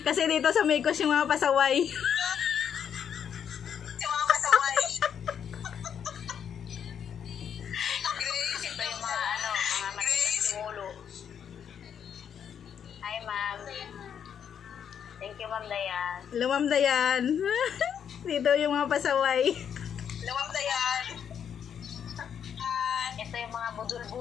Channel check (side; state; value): right; quieter; 8.2 dB